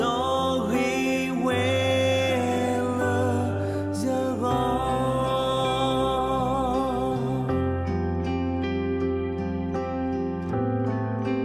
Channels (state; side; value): noise; right; rumble, 26 dB below the sound